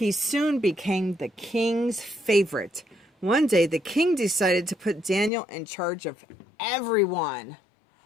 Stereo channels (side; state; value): right; drops out; at 5.3 s